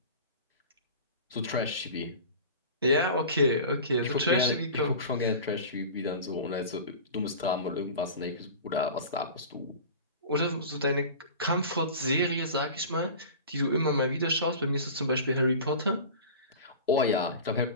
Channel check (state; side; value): inverted; both; correlation -0.36